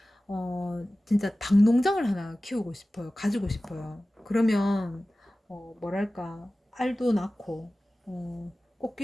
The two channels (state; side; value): normal; both; correlation 0.96